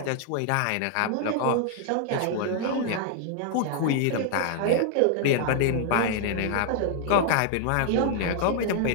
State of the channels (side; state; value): both; different; correlation 0.00